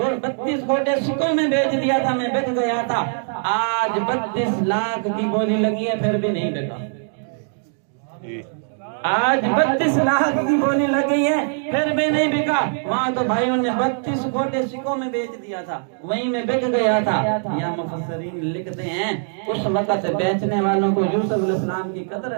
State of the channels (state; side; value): silent; left; digital silence